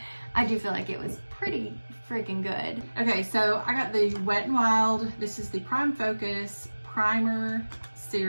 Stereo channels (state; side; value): inverted; both; correlation -1.00